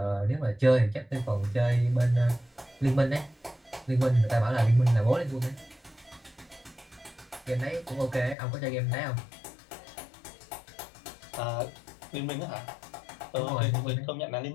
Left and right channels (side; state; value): right; drops out; at 8.3 s